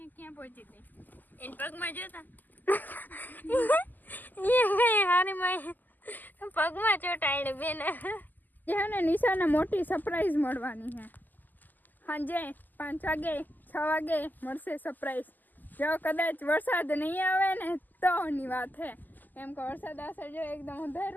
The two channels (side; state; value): right; late; 0.085 ms